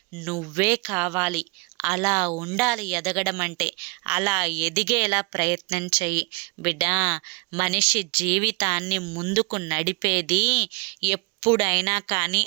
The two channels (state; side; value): quieter; left; 29.9 dB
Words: నువ్వే కావాలి. అలా ఉండాలి ఎదగడం అంటే. అలా ఎదిగేలా ప్రయత్నం చెయ్యి బిడ్డ. మనిషి జీవితాన్ని ముందుకు నడిపేది ఎప్పుడైనా కానీ